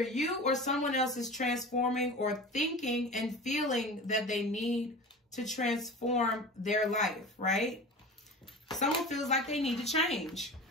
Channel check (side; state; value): both; normal; correlation 0.34